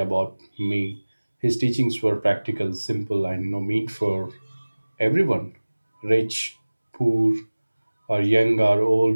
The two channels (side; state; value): both; inverted; correlation -1.00